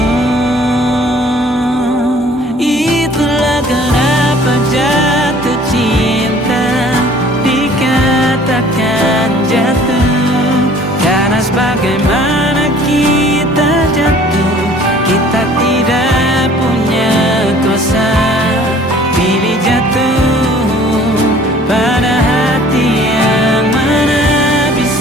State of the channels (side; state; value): both; normal; correlation 0.53